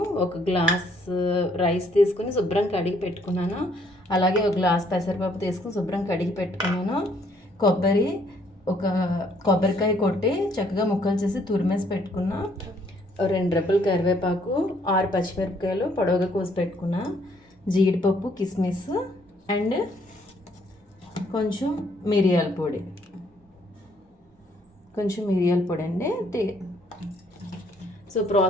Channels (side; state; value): both; normal; correlation 0.66